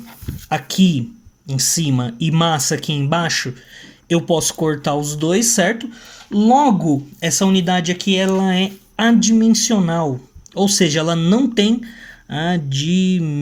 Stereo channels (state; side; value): identical; both; correlation 1.00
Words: aqui em cima e massa aqui embaixo, eu posso cortar os dois, certo? Logo, essa unidade aqui ela é adimensional, ou seja, ela não tem